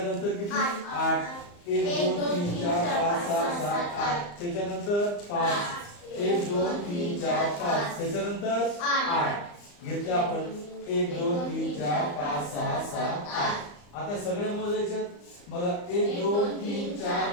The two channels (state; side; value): late; right; 34 ms